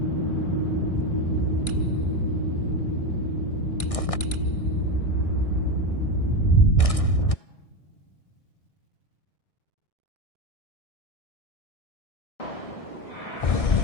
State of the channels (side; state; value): right; late; 1.6 ms